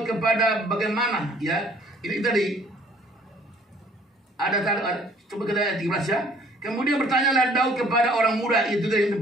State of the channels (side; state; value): both; normal; correlation 0.58